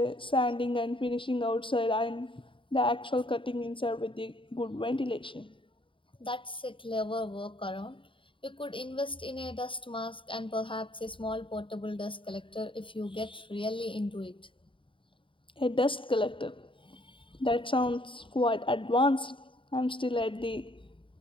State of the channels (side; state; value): right; late; 0.25 ms